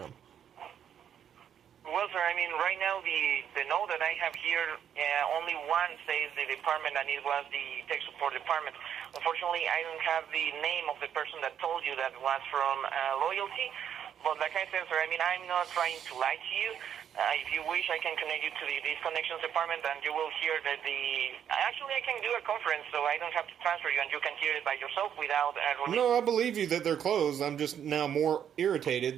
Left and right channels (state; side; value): quieter; left; 9.1 dB